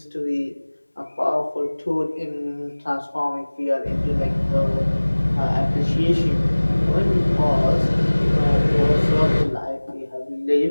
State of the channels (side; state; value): both; inverted; correlation -1.00